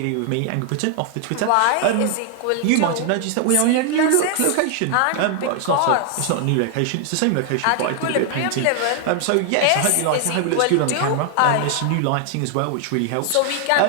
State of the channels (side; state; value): both; different; correlation 0.00